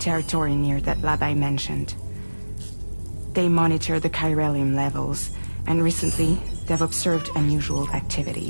near that lab I mentioned. They monitor the chiralium levels, and recently, they've observed unusual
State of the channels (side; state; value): both; inverted; correlation -1.00